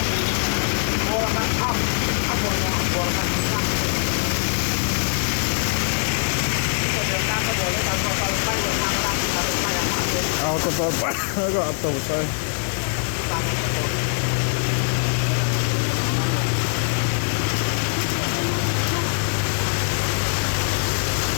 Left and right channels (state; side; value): silent; right; 64 dB below the other